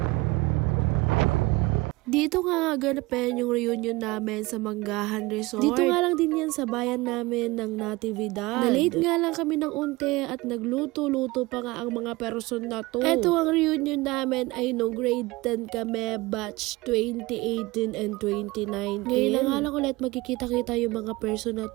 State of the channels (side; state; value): left; quieter; 21.8 dB